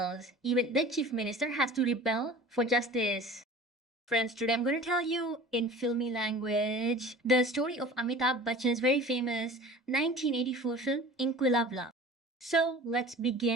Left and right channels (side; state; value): both; normal; correlation 0.41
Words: even the chief minister has to rebel for justice. Friends, today I'm going to tell you in filmy language the story of Amitabh Bachchan's very famous 1984 film Inkalaab Movie. So let's